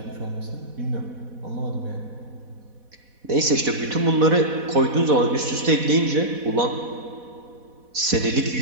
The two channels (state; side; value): late; left; 4.1 ms